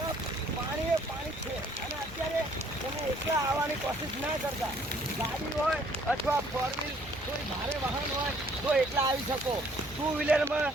પાણી છે. અને અત્યારે તમે એકલા આવવાની કોશિશ ના કરતા. ગાડી હોય અથવા 4 વ્હીલ કોઈ ભારે વાહન હોય તો એકલા આવી શકો. 2 વ્હીલરમાં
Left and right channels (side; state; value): both; normal; correlation 0.61